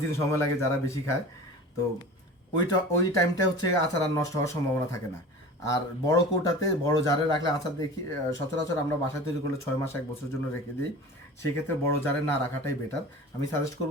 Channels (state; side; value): normal; both; correlation 0.37